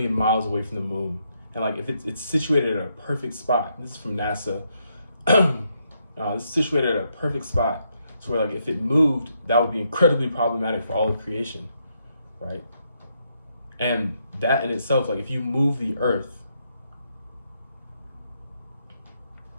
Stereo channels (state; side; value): inverted; both; correlation -0.77